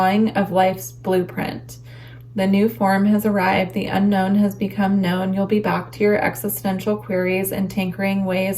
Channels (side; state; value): both; identical; correlation 1.00